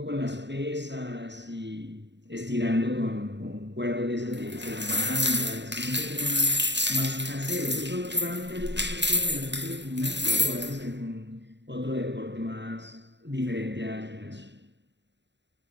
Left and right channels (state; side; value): late; left; 0.52 ms